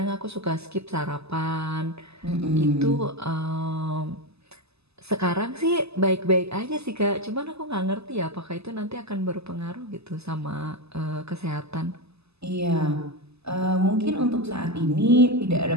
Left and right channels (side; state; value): left; late; 0.79 ms